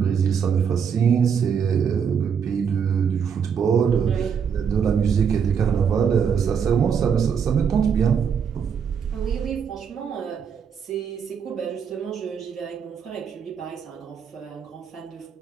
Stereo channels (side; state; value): left; quieter; 7.1 dB